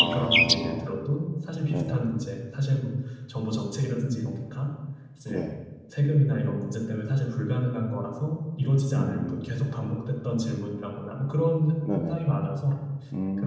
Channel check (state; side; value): identical; both; correlation 1.00